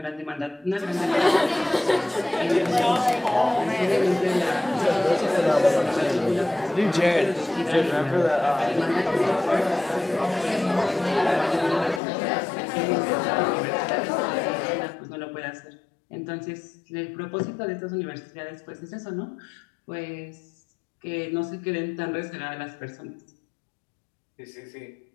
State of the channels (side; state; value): right; drops out; at 12.0 s